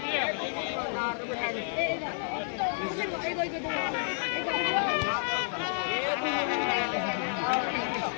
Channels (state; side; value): silent; right; digital silence